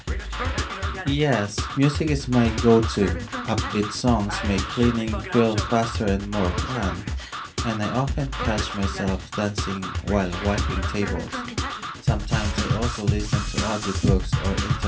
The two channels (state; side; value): identical; both; correlation 1.00